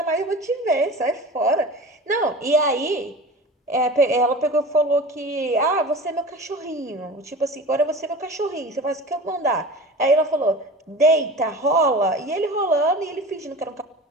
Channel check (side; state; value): both; normal; correlation 0.35